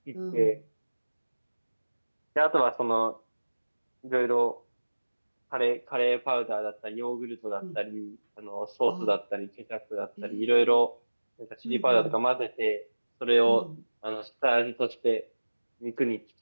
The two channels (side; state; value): both; inverted; correlation -1.00